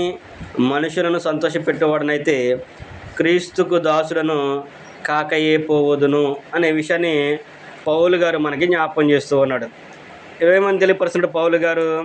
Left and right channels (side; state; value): both; identical; correlation 1.00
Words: మనుషులను సంతోషపెట్టేవాడనైతే క్రీస్తుకు దాసులను కాకయే పోవదును అనే విషయాన్ని పౌలు గారు మనకి జ్ఞాపకం చేస్తూ ఉన్నాడు. ఏమని తెలియపరుస్తున్నాడు పౌలు గారు?